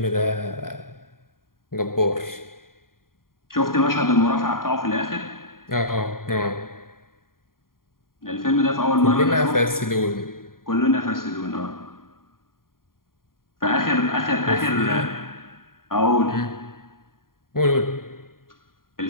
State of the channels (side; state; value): right; late; 0.91 ms